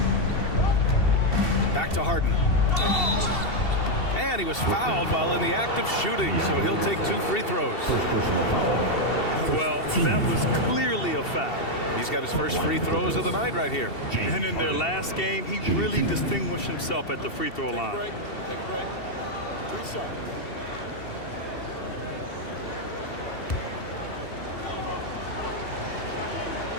Back to Harden. And he was fouled while in the act of shooting, so he'll take 2 free throws. Well, that was clearly a foul. He's got his first free throws of the night right here. And in their last game, he really distinguished himself at the free throw line. Take a break. 3 shots.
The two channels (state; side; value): late; right; 2.7 ms